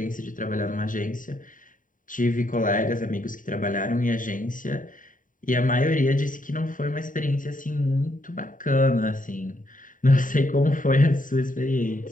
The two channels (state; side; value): late; right; 0.39 ms